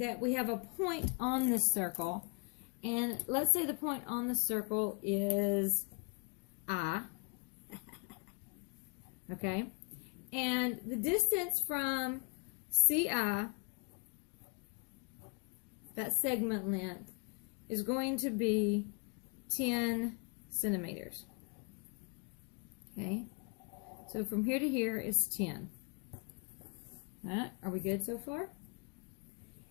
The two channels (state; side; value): quieter; right; 33.2 dB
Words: we have a point on this circle, and let's say the point on the circle is I, okay? And the distance from CI, that segment length, is going to be 10 centimeters. Okay? So from here to here is 10. All right, are we good so far?